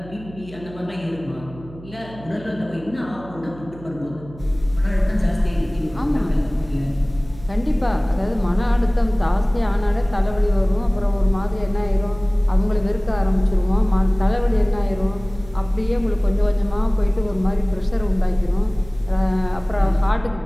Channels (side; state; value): right; noise; hum, 18 dB below the sound